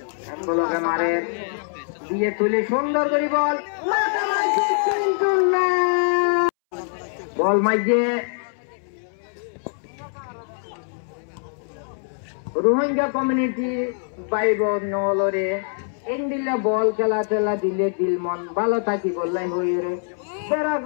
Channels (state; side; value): silent; right; 63 dB below the other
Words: বলকে মারে দিয়ে তুলি সুন্দর করে বল মাথা মারছে কিন্তু না বল মাইছে রোহিঙ্গা কমিউনিটি বাইব নলরে ইন্দিলে বল খেলা টেলা দিলে দিল মন ভালো থাকি বললাই হই রে বেড়া